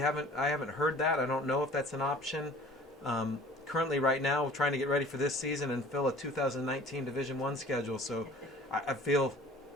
I haven't heard that. I don't know if that's an option. Currently, right now, we're trying to get ready for this season and fill a 2019 Division I schedule, so I feel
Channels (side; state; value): both; normal; correlation 0.48